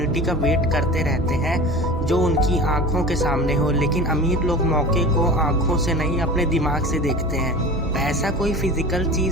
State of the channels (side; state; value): both; normal; correlation 0.36